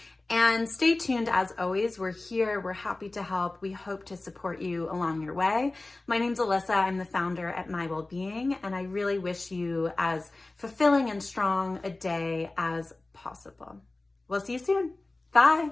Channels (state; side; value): quieter; right; 3.0 dB